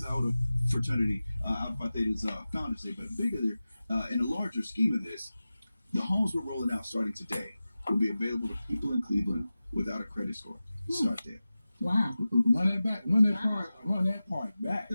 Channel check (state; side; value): inverted; both; correlation -0.95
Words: our fraternity, Alpha Theta's Founders Day, but bigger there, in a larger scheme of this, the homes we're rolling out starting today will be available to people in Cleveland without a credit score. Start there. Wow. Run that back. Run that part back.